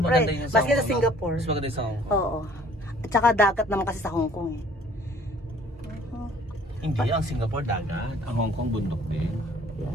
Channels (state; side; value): normal; both; correlation 0.55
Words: maganda yung Maski Hong sa Kong, Singapore. Mas maganda yung sa Hong Kong. Oo. At saka dagat naman kasi sa Hong Kong eh. Hindi, ang Singapore dagat. Ang Hong Kong bundok din.